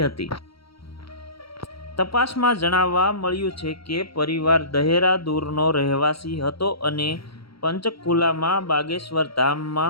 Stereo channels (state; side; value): late; right; 0.75 ms